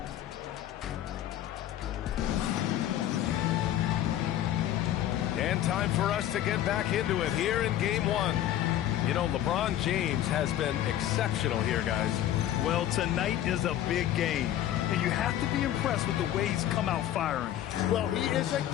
time for us to get back into it here in Game 1. You know, LeBron James has been exceptional here, guys. Well, tonight is a big game, and you have to be impressed with the way he's come out firing. Well, he is a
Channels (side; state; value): right; quieter; 12.1 dB